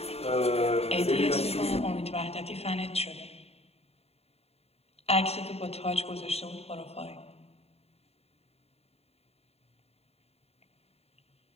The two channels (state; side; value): late; right; 0.30 ms